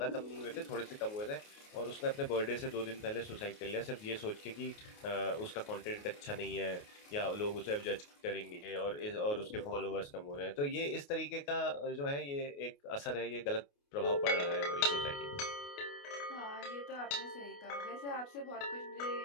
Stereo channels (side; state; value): right; late; 28 ms